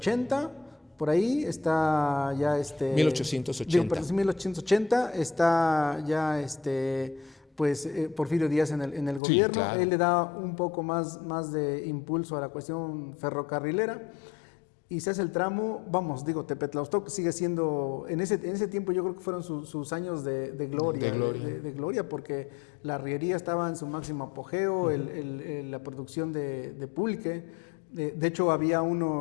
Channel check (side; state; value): right; drops out; at 9.2 s